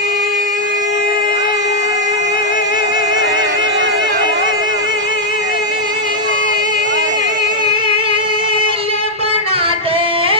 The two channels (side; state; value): both; normal; correlation -0.03